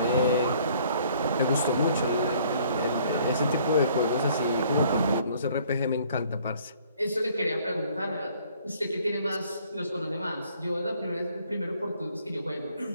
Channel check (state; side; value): inverted; both; correlation -0.59